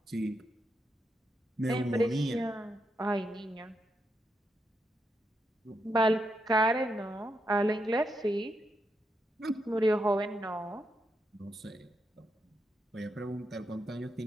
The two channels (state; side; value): normal; both; correlation 0.82